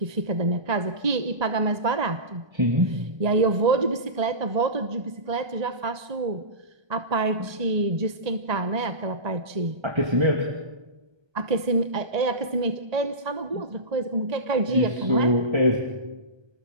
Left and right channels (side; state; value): left; late; 1.2 ms